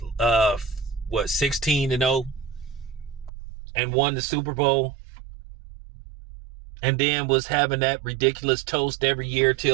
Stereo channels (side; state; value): left; drops out; at 3.3 s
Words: 16-0 and won the Super Bowl. And then was having that ridiculous toast every year